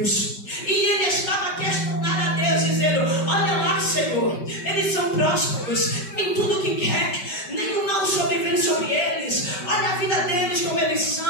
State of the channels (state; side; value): late; right; 5.2 ms